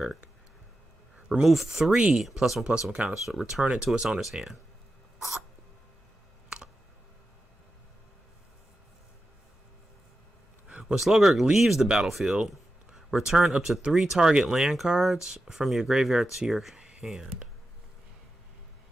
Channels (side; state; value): both; normal; correlation 0.91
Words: Remove 3 +1/+1 counters. So return it to its owner's hand. When Slogurk leaves the battlefield, return up to 3 target land cards from your graveyard to your hand.